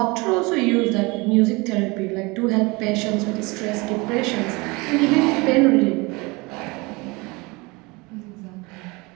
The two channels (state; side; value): quieter; left; 25.3 dB